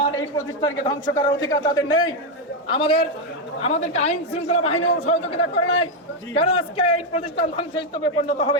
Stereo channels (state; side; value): normal; both; correlation 0.04